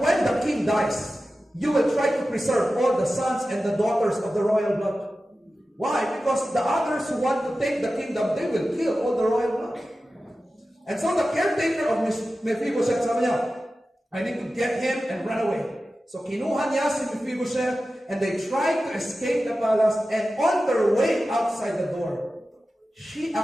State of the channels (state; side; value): normal; both; correlation 0.94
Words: the king dies, you will try to preserve all the sons and the daughters of the royal blood. Why? Because the others who want to take the kingdom, they will kill all the royal blood. And so the caretaker of Mephibosheth, sabi niya, I need to get him and run away. So kinuha niya si Mephibosheth, and they tried to escape the palace, and on their way outside the door, she